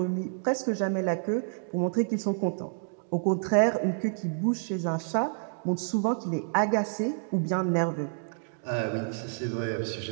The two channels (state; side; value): silent; left; digital silence